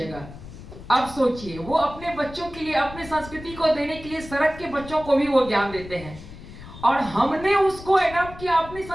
अब सोचिए, वो अपने बच्चों के लिए, अपने संस्कृति को देने के लिए सड़क के बच्चों को भी वो ज्ञान देते हैं, और हमने उसको एडॉप्ट किया अपनी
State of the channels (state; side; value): noise; left; rumble, 15 dB below the sound